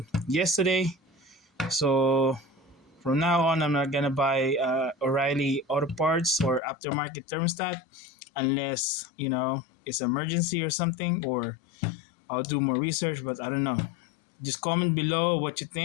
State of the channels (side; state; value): right; drops out; at 6.6 s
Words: yesterday. So from now on, I'm not gonna buy O'Reilly auto parts or aftermarket thermostat unless it's emergency or something, or I'll do more research. But I don't know. Just comment below what you